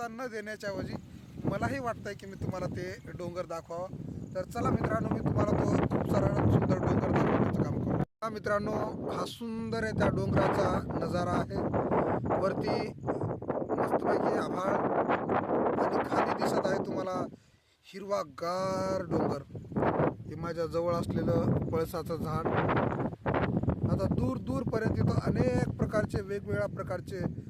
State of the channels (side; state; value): both; identical; correlation 1.00